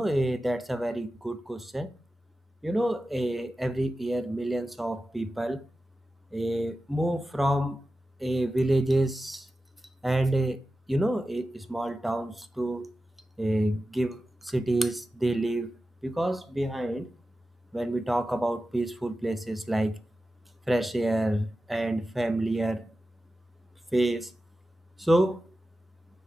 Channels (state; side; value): normal; both; correlation 0.93